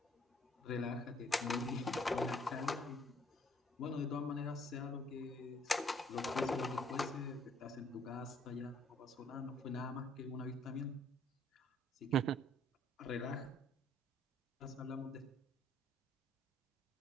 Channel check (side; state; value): both; normal; correlation 0.64